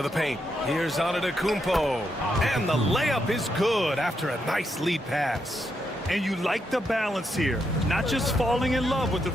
the paint. Here's Antetokounmpo. And the layup is good after a nice lead pass. And you like the balance here, not just falling in love with the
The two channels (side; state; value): both; normal; correlation 0.81